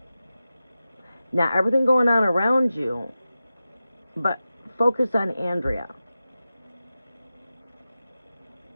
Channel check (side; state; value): both; inverted; correlation -0.93